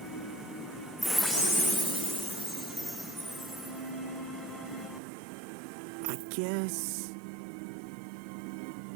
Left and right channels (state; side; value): drops out; left; at 5.0 s